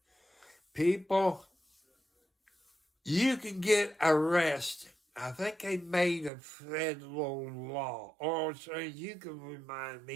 People, you can get arrested. I think they made a federal law. Or so you can remind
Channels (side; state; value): left; drops out; at 6.3 s